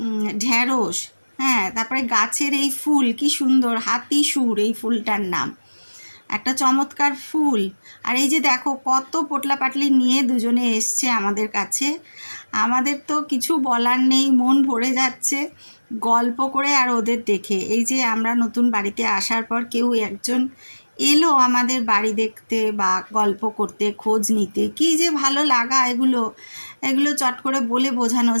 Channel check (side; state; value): both; inverted; correlation -1.00